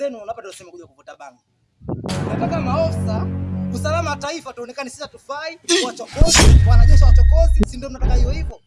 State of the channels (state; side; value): identical; both; correlation 1.00